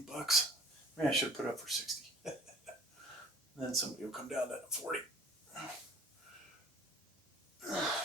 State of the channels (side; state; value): both; normal; correlation 0.47